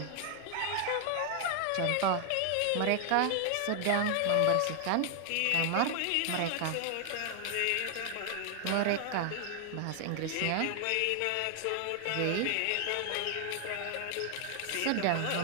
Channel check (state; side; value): different; both; correlation 0.00